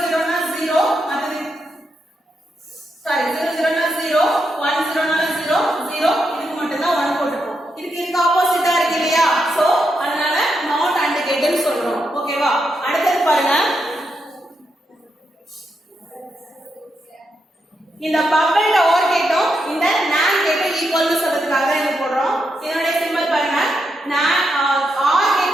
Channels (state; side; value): normal; both; correlation 0.83